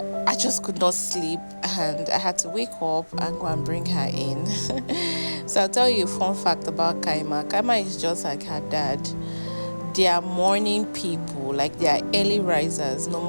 I just could not sleep, and I had to wake up and go and bring her in. So I'll tell you a fun fact about Kaima. Kaima is just like her dad. They are morning people, like they are early risers. No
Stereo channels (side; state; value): both; inverted; correlation -1.00